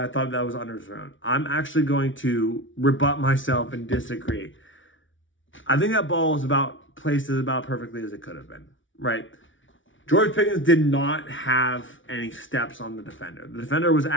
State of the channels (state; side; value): late; right; 0.56 ms